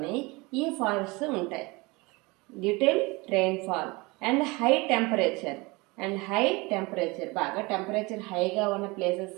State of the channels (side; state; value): left; quieter; 24.9 dB